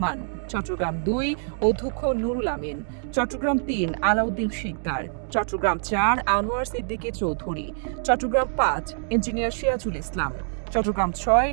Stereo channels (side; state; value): left; silent; digital silence